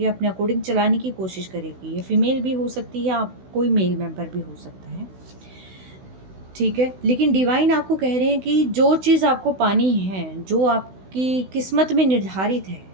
अपने अकॉर्डिंग चलाने की कोशिश करेगी। ये फीमेल भी हो सकती है, आप कोई मेल मेंबर भी हो सकता है, ठीक है। लेकिन डिवाइन आपको कह रहे हैं कि जो चीज़ आपको पानी है, जो आपकी किस्मत में निर्धारित है,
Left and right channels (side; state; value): left; late; 16 ms